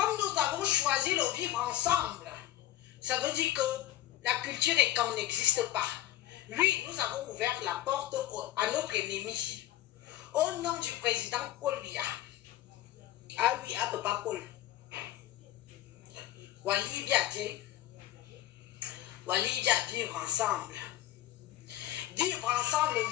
nous avons choisi de vivre ensemble, ça veut dire que la culture est quand n'existe pas. Oui, nous avons ouvert la porte à notre ennemi. Au nom du président Paul Biya. Ah oui, à Papa Paul. Wali Biadje. Wali Biya, vivre ensemble. Vivre ensemble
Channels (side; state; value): right; quieter; 14.1 dB